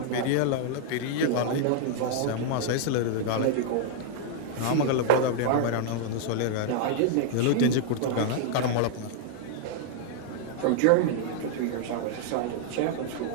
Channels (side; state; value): both; different; correlation 0.00